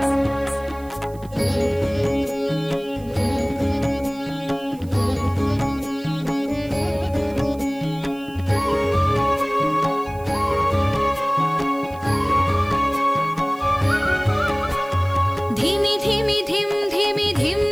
धिमि धिमि धिम धिमि धिम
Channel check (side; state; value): right; noise; hiss, 25 dB below the sound